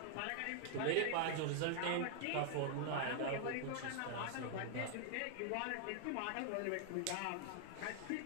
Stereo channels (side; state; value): both; different; correlation -0.01